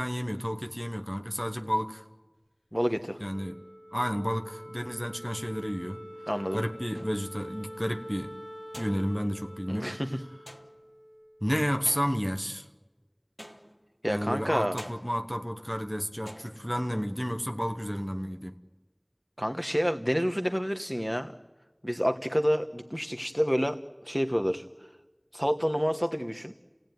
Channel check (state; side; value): identical; both; correlation 1.00